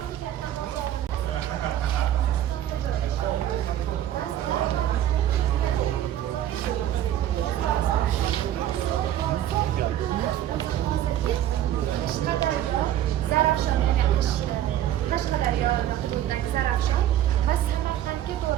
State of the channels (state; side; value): quieter; left; 11.9 dB